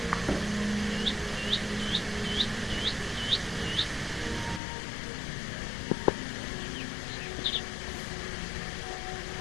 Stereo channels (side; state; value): right; drops out; at 4.6 s